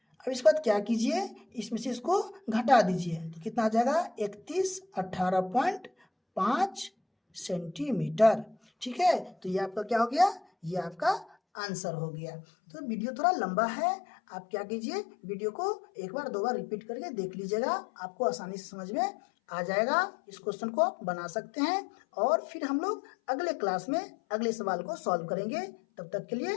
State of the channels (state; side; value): drops out; right; at 11.4 s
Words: अब इसके बाद क्या कीजिए, इसमें से इसको घटा दीजिए तो कितना आ जाएगा 3118.5 सेंटीमीटर। ठीक है, तो ये आपका क्या हो गया, ये आपका आंसर हो गया। तो वीडियो थोड़ा लंबा है, आप क्या कीजिए वीडियो को एक बार 2 बार रिपीट करके देख लीजिएगा, आपको आसानी से समझ में आ जाएगा। इस क्वेश्चन को आप बना सकते हैं और फिर हम लोग अगले क्लास में अगले सवाल को सॉल्व करेंगे। तब तक के